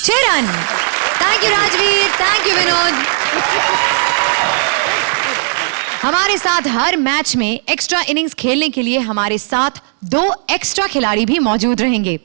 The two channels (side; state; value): left; silent; digital silence